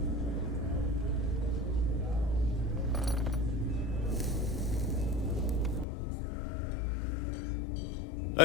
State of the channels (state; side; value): drops out; right; at 5.9 s